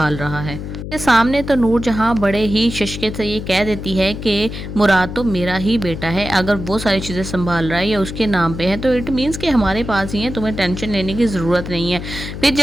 रहा है। के सामने तो नूर जहाँ बड़े ही शशके से ये कह देती है कि मुराद तो मेरा ही बेटा है, अगर वो सारी चीज़ें संभाल रहा है या उसके नाम पे है तो इट मीन्स कि हमारे पास ही है, तुम्हें टेंशन लेने की ज़रूरत नहीं है। फिर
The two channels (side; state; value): left; noise; hum, 8 dB below the sound